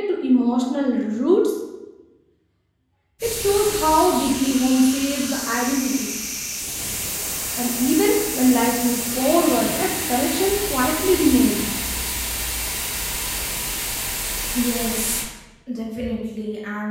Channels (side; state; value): both; identical; correlation 1.00